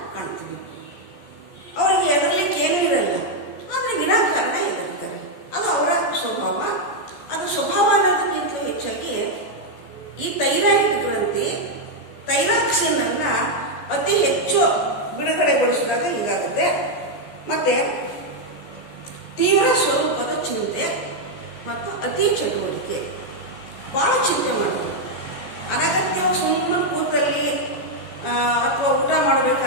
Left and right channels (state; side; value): late; right; 14 ms